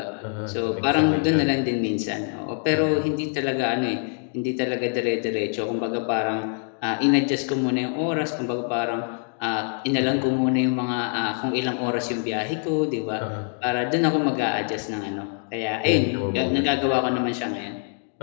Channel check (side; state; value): right; silent; 57 dB below the other